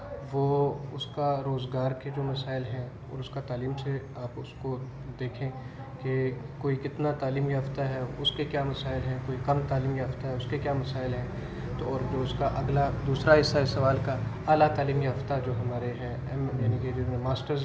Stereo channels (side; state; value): both; identical; correlation 1.00